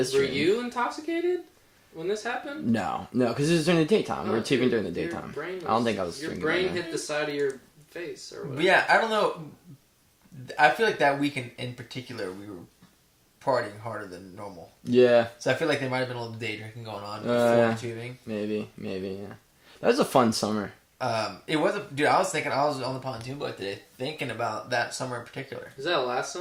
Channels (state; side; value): identical; both; correlation 1.00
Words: dream. Were you intoxicated when this happened? No, because it was during the daytime. We were taping during the daytime. I don't think I was. Your brain hit the side of your face or whatever. Yeah, I don't know. I feel like that weekend in particular, we were partying harder than normal. Yeah. So I feel like there might have been a little day drinking going on before tubing. Maybe, yeah. That was a fun summer. It was dude. I was on the pontoon boat today, thinking about that summer in particular. Was that last